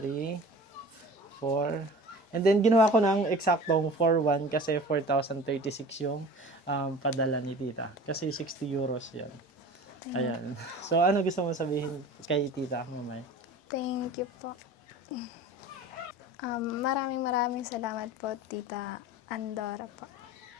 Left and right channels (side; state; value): both; normal; correlation 0.40